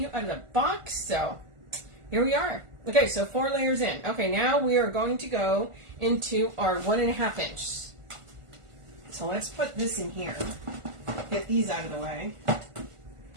out of the box, so here we are. Okay, so 4 layers in. Okay, now we are going to go into our 1.5 inch. So let's put this in here. Get these out of the way.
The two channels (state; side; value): late; left; 1.5 ms